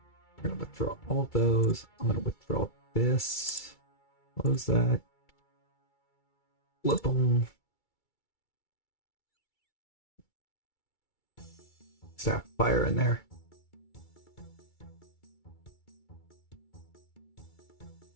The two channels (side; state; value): right; late; 2.3 ms